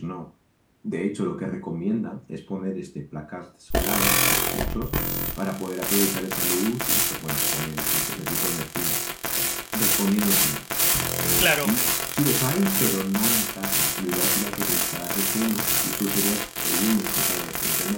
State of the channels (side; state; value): both; identical; correlation 1.00